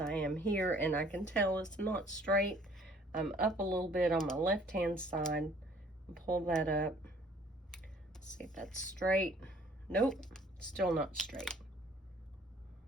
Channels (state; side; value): normal; both; correlation 0.57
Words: I am here, and I can tell it's not straight. I'm up a little bit on my left-hand side. Pull that up. Let's see if that's straight. Nope, still not straight.